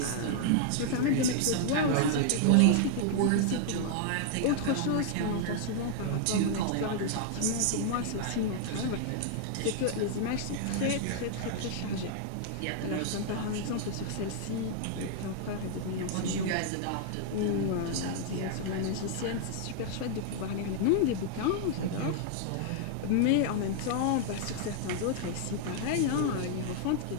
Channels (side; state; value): both; different; correlation -0.01